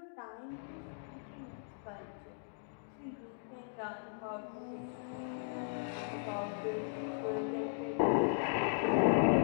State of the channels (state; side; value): silent; right; digital silence